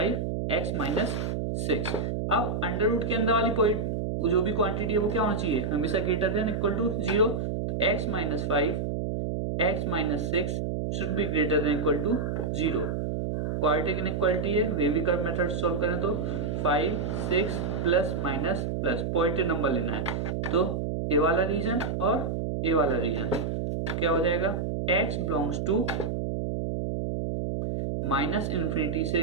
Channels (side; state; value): right; noise; hum, 1 dB below the sound